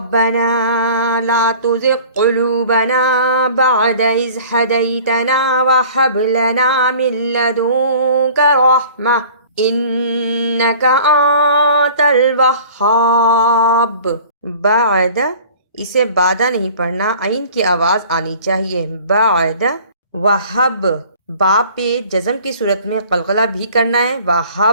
لا تزغ قلوبنا بعد اذ ہدیتنا وہب لنا من لدنک رحمہ انک انت الوہاب۔ بعد، اسے بادہ نہیں پڑھنا، عین کی آواز آنی چاہیے۔ بعد، وہب، با پہ جزم کی صورت میں قلقلہ بھی کرنا ہے،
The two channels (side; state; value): both; inverted; correlation -0.47